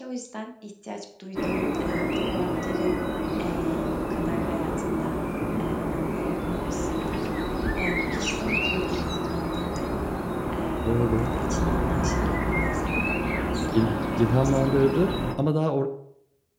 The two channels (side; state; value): both; identical; correlation 1.00